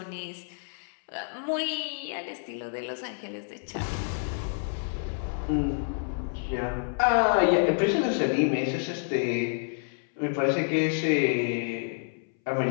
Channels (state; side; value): silent; right; 59 dB below the other